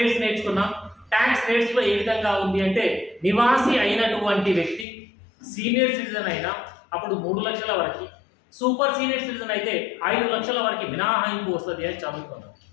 నేర్చుకున్నాం. ట్యాక్స్ రేట్స్ లో ఏ విధంగా ఉంది అంటే నివాసి అయినటువంటి వ్యక్తి సీనియర్ సిటిజన్ అయినా అప్పుడు 3 లక్షల వరకు, సూపర్ సీనియర్ సిటిజన్ అయితే 5 లక్షల వరకు మినహాయింపు వస్తుంది అని చదువుకున్నాం.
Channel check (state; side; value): drops out; right; at 4.9 s